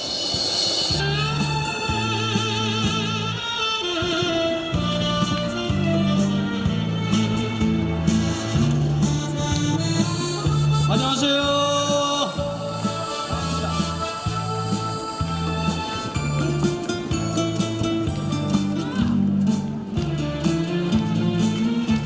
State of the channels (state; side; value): identical; both; correlation 1.00